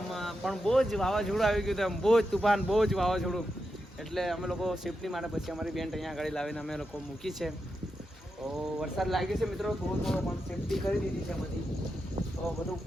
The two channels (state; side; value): normal; both; correlation 0.87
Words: પણ બહુ જ વાવાઝોડું આવી ગયું હતું, બહુ જ તુફાન, બહુ જ વાવાઝોડું. એટલે અમે લોકો સેફટી માટે પછી અમારી બેન્ડ અહીંયા આગળ લાવીને અમે લોકો મૂકી છે. તો વરસાદ લાગ્યો છે મિત્રો, થોડો થોડો, પણ સેફટી કરી દીધી છે બધી. તો બધું